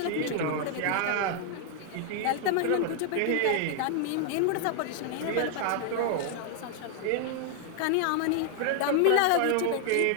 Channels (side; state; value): both; different; correlation 0.00